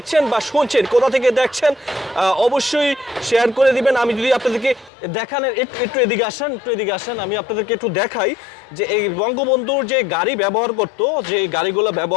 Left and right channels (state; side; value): drops out; right; at 4.9 s